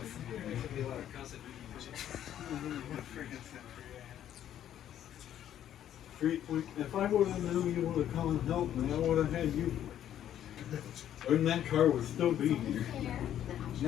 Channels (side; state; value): right; quieter; 10.9 dB